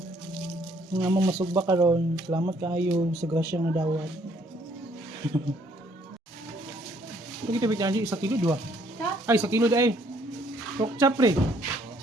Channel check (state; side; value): normal; both; correlation 0.65